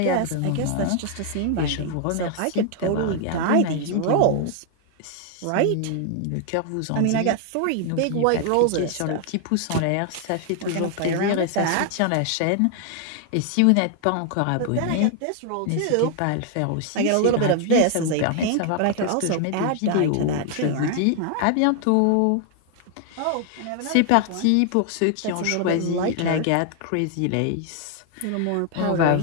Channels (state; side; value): different; both; correlation 0.00